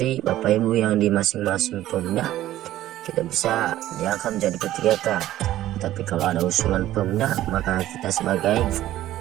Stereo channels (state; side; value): quieter; left; 14.0 dB